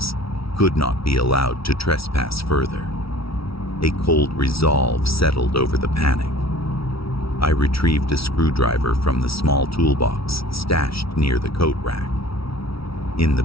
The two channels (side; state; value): right; late; 0.75 ms